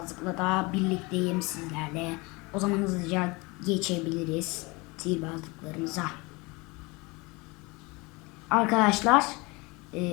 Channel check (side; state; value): right; quieter; 25.6 dB